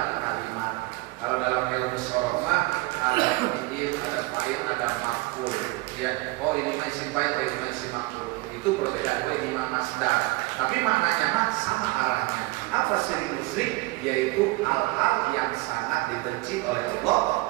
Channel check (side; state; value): left; quieter; 22.3 dB